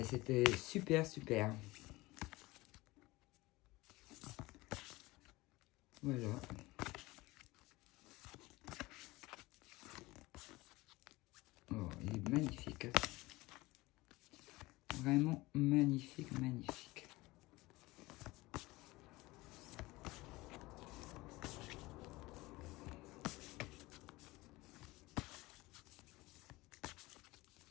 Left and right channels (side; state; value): right; quieter; 20.7 dB